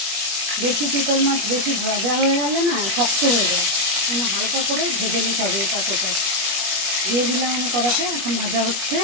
বেশি চিতল মাছ বেশি ভাজা হয়ে গেলে না শক্ত হয়ে যায়, হালকা করে ভেজে নিতে হবে। এটা দিয়ে দিলাম আমি কড়াতে, এখন ভাজা হচ্ছে।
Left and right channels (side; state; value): left; late; 21 ms